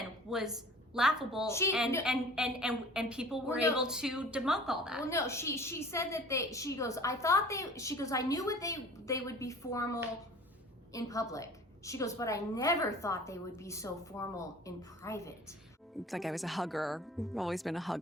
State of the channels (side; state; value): both; normal; correlation 0.45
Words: was laughable, and people were able to debunk all that. Well, no, she said that I knew they would be formal in public. She goes, but I never thought they would be so formal in private. It's like I was a hugger. I've always been a